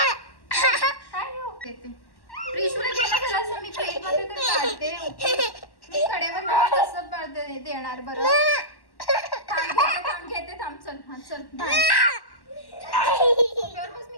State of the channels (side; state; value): right; late; 1.1 ms